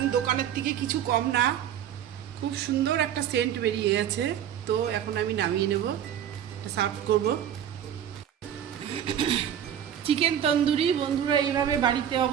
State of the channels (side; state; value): left; quieter; 9.9 dB